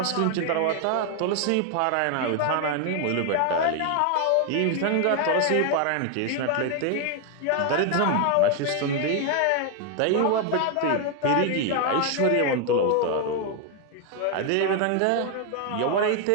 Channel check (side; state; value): both; different; correlation 0.01